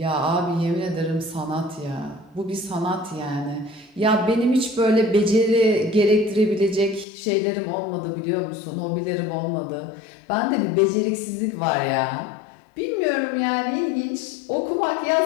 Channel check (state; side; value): drops out; right; at 7.1 s